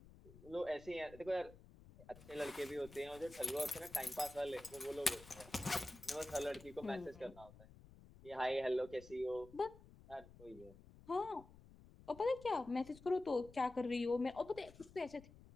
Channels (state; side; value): noise; left; rumble, 20 dB below the sound